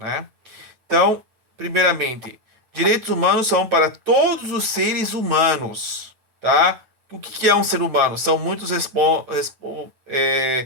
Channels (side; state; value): left; late; 9.0 ms